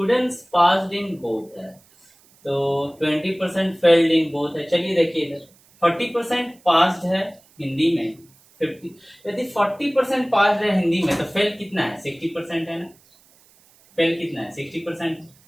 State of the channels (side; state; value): right; noise; hiss, 30 dB below the sound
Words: पास्ड इन बोथ है, तो 20% फेल्ड इन बोथ है। चलिए देखिए इधर 40% पास्ड है हिंदी में, 50, यदि 40% पास्ड है हिंदी में तो फेल कितना है 60% है ना, फेल कितना है 60%।